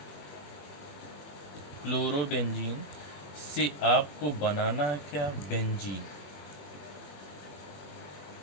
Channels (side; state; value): right; late; 21 ms